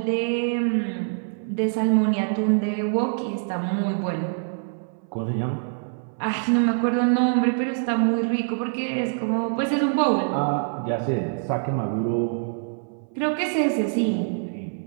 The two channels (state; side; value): silent; left; 59 dB below the other